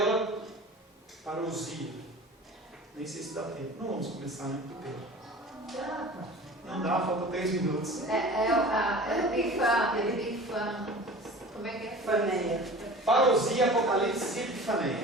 parousia. Nem sei se dá tempo. Não vamos começar, né? Não dá, falta 3 minutos. Como é que é? Epifaneia. Parousia, Apocalipse e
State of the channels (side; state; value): both; normal; correlation 0.40